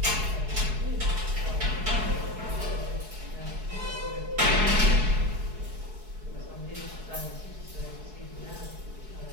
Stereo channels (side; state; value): left; late; 4.7 ms